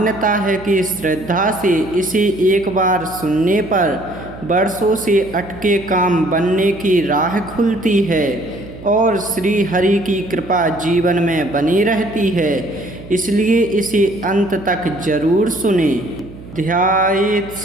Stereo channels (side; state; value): right; noise; hum, 16 dB below the sound